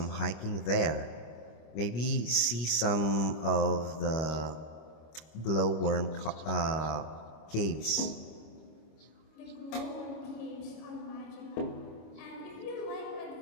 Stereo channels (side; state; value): right; late; 25 ms